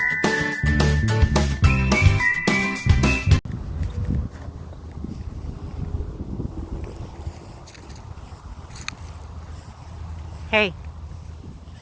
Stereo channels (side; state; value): both; identical; correlation 1.00